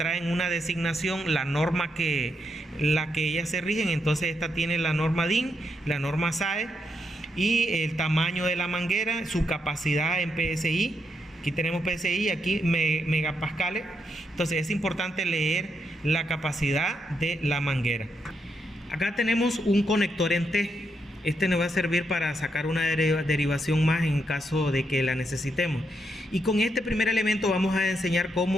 una designación, la norma la que ellas se rigen. Entonces esta tiene la norma DIN, la norma SAE y el tamaño de la manguera, su capacidad en PSI. Aquí tenemos PSI, aquí megapascales. Entonces es importante leer la capacidad de la manguera. Acá tenemos un conector en T. Este nos va a servir para sacar una derivación más en caso de que la necesitemos. Y con este primer elemento vamos a enseñar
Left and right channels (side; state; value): both; normal; correlation 0.80